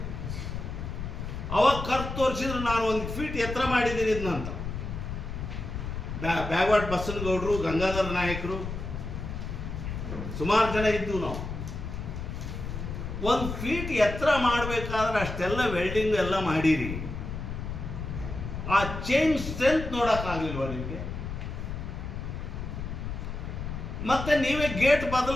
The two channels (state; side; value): noise; left; rumble, 6 dB below the sound